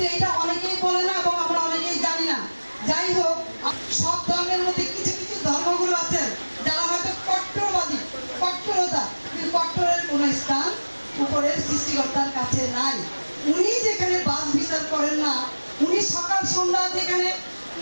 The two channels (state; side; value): inverted; both; correlation -1.00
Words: এটা অনেকেই বলে না এবং আমরা অনেকেই জানি না। যাই হোক, সব ধর্মের মধ্যে কিছু কিছু ধর্মগুলো আছে যারা হয়তো কট্টরবাদী, কট্টরতা, কিন্তু কট্টরের কোনো স্থান উপরের সৃষ্টিকর্তার কাছে নাই। উনি যেখানে বাস বিচার করেন না, উনি সকাল সন্ধ্যা যেখানে